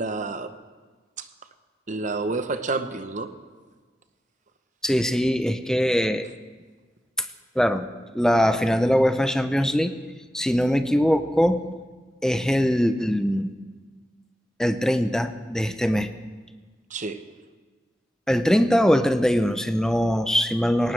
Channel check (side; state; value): both; normal; correlation 0.90